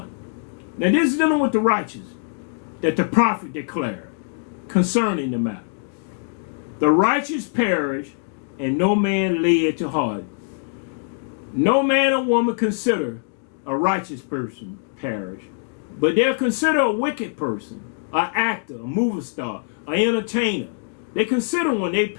Now this is dealing with the righteous that the prophet declared concerning the matter. The righteous perish, and no man lay it to heart. No man or woman consider a righteous person perish, but they'll consider a wicked person, an actor, a movie star, an entertainer. They consider when they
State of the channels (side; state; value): right; silent; digital silence